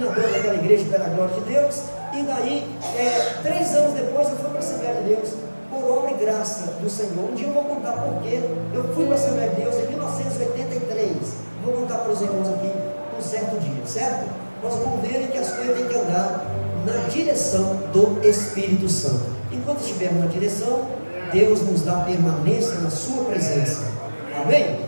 daquela igreja pela glória de Deus. E daí, 3 anos depois, eu fui para a Assembleia de Deus, por obra e graça do Senhor. Um dia eu vou contar porquê. Eu fui para a Assembleia de Deus em 1983. Vou contar para os irmãos aqui um certo dia, certo? Nós vamos ver que as coisas têm que andar na direção do Espírito Santo. Enquanto estivermos na direção, Deus nos dá permanência na sua presença. Amém?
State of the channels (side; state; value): both; inverted; correlation -1.00